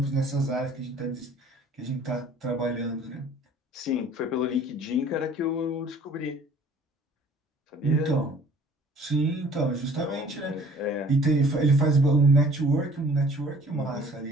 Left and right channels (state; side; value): normal; both; correlation 0.53